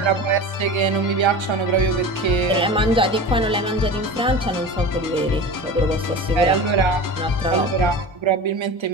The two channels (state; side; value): normal; both; correlation 0.32